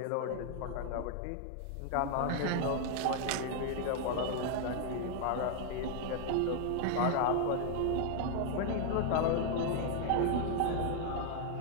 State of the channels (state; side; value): different; both; correlation 0.00